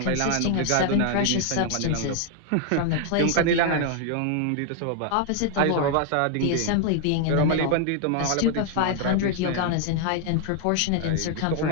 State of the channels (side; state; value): both; different; correlation 0.00